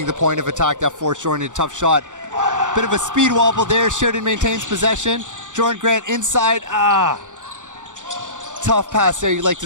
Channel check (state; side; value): late; left; 0.86 ms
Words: the point of attack that forced Jordan into a tough shot. Bit of a speed wobble there. Sheridan maintains possession. Jordan Grant inside. Tough pass there. You'd like